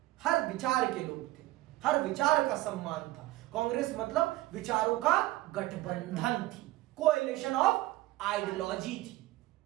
हर विचार के लोग थे, हर विचार का सम्मान था। कांग्रेस मतलब विचारों का गठबंधन थी, कोएलिशन ऑफ आइडियोलॉजी थी।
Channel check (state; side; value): quieter; left; 17.7 dB